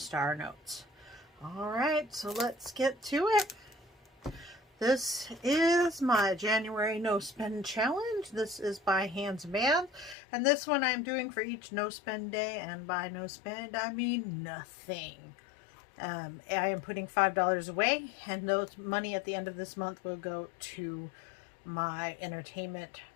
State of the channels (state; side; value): drops out; right; at 10.2 s